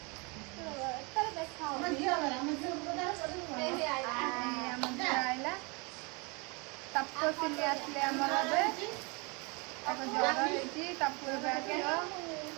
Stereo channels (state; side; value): quieter; left; 29.9 dB